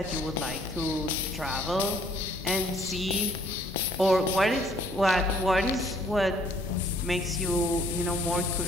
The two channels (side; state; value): both; normal; correlation 0.62